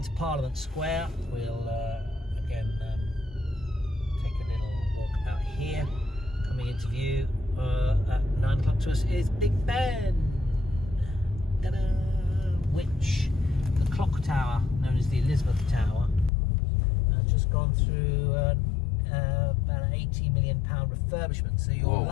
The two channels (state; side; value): drops out; right; at 16.3 s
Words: Parliament Square, we'll again take a little walk out here. Coming into view at 9 o'clock to us is Big Ben, ta-da! Which the clock tower, known as the Elizabeth Tower, has just gone through about an £80 million refurbishment. So you're